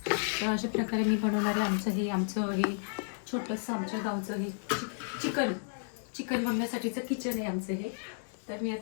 तर अशा प्रकारे मी बनवणार आहे आमचं हे छोटंसं आमच्या गावचं हे चिकन बनवण्यासाठीचं किचन आहे आमचं हे. तर मी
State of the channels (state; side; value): silent; right; digital silence